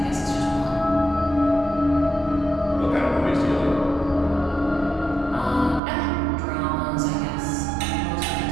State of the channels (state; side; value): drops out; left; at 5.8 s